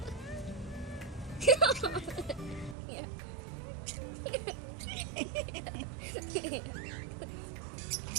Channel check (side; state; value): left; drops out; at 2.8 s